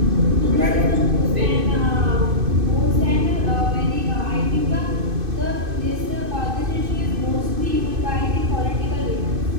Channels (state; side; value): late; left; 2.6 ms